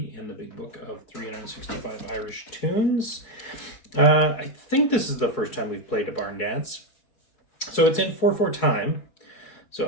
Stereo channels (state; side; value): late; right; 4.7 ms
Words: in the big book of 365 Irish Tunes. I think this is the first time we've played a barn dance. So it's in 4/4 time. So